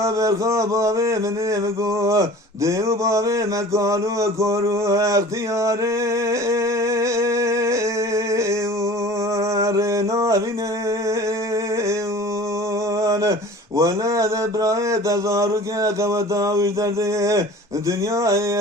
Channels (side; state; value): both; normal; correlation 0.42